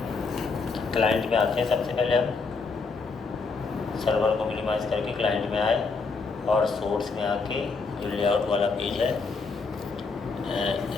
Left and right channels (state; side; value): quieter; right; 4.4 dB